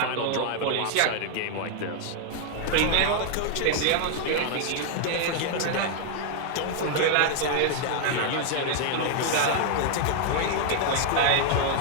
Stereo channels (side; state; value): both; different; correlation 0.00